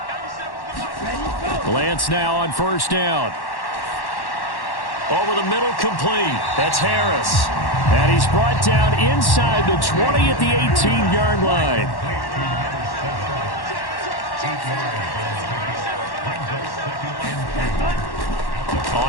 Lance now on 1st down. Over the middle, complete. That's Harris. And he's brought down inside the 20 at the 18-yard line.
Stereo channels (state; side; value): late; right; 1.1 ms